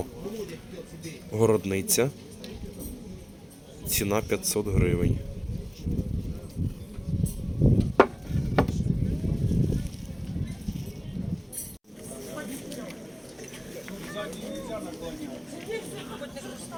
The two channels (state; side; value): identical; both; correlation 1.00